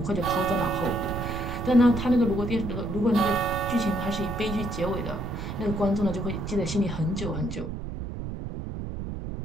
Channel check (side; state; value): right; noise; rumble, 6 dB below the sound